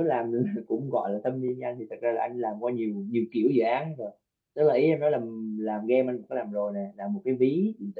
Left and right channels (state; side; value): identical; both; correlation 1.00